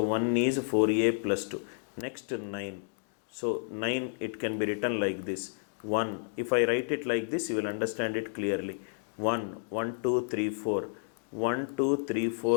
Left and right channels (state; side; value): silent; right; digital silence